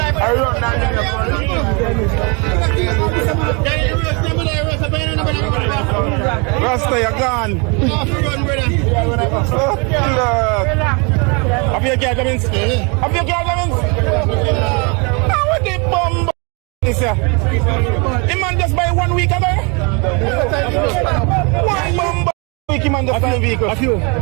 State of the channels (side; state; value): left; quieter; 31.8 dB